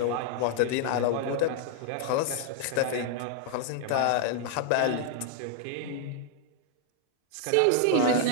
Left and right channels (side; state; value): both; different; correlation -0.01